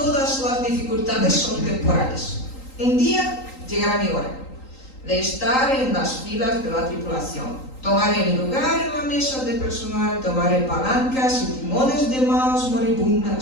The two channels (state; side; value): late; right; 3.8 ms